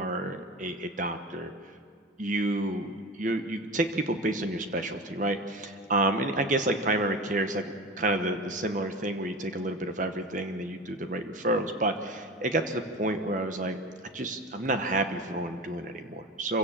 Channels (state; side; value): normal; both; correlation 0.30